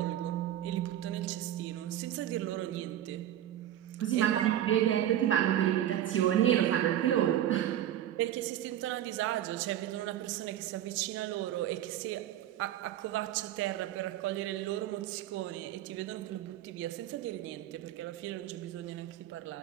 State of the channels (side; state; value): left; quieter; 11.9 dB